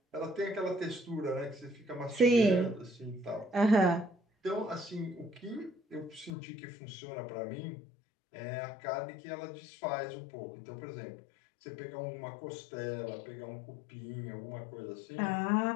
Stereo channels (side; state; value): right; drops out; at 6.3 s